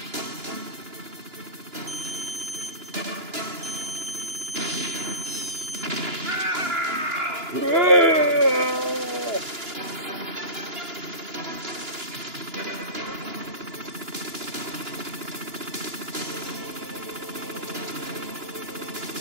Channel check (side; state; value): left; late; 2.9 ms